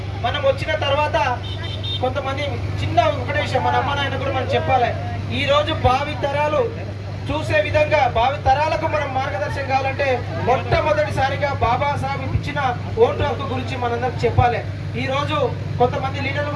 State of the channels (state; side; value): identical; both; correlation 1.00